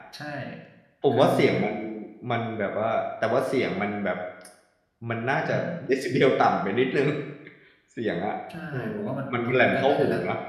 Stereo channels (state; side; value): identical; both; correlation 1.00